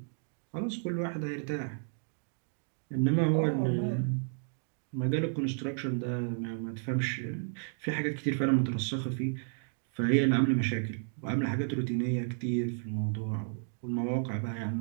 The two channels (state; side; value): silent; left; digital silence